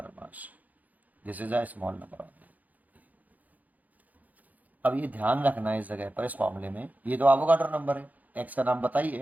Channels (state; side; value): late; left; 0.079 ms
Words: mass, this is a small number. अब ये ध्यान रखना है इस जगह पर, इस फॉर्मूले में ये तो एवोगाड्रो नंबर है, एक्स का नाम